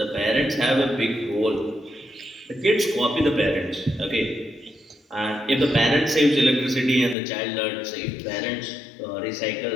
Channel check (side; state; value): right; drops out; at 7.2 s